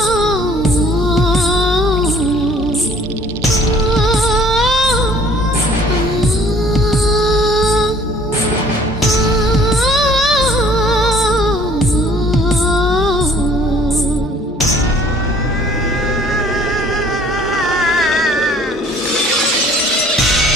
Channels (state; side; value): normal; both; correlation 0.54